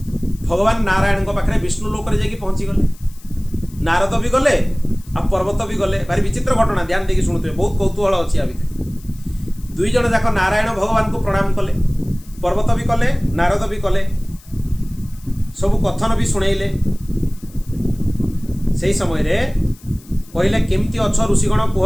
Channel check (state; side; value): noise; left; hiss, 25 dB below the sound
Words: भगवान नारायण को पाखरे विष्णु लोक रे जाकी पहुंची गले नारद भी गले आ पर्वत भी गले भारी विचित्र घटना ध्यान देकी सुनुते बहुत कौतूहल अछि आ भितर दुई जण जाक नारायण भगवान को प्रणाम कले पर्वत भी कले नारद भी कले सब कथन भी सुनेइले सेही समय रे कहले केमती अछ ऋषिगण